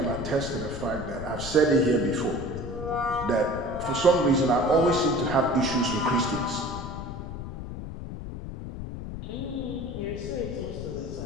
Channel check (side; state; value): left; noise; rumble, 8 dB below the sound